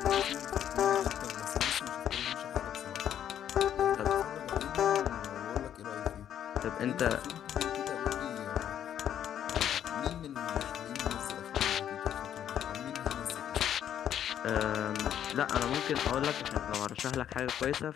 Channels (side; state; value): right; quieter; 10.1 dB